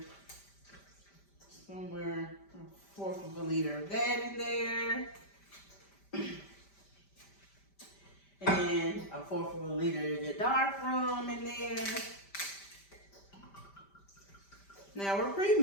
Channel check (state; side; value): late; right; 5.1 ms